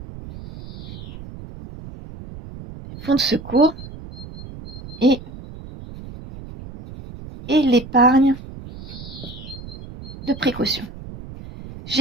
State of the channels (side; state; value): right; noise; rumble, 14 dB below the sound